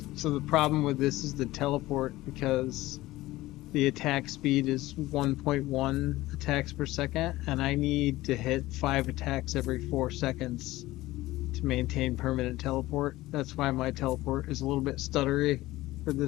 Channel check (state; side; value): quieter; right; 17.7 dB